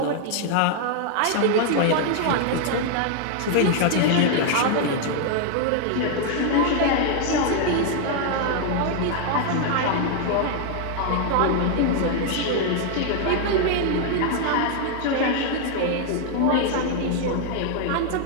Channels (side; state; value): both; different; correlation 0.00